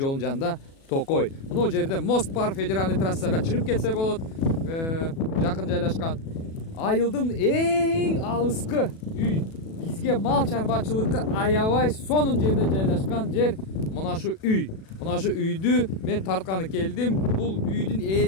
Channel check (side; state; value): right; late; 37 ms